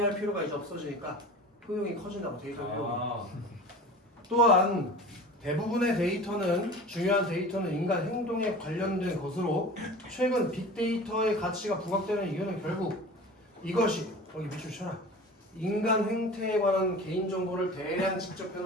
필요가 이제 없어지니까 효용이 커진다고 데이터 효용 또한 대부분의 데이터는 중요한 데이터는 인간 행동에 관련된 것으로 최근 빅데이터의 가치가 부각되는 이유는 결국 이것이 여기 밑줄 쳐라 인간 행태에 관한 개인정보를 대량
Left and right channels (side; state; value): both; normal; correlation 0.37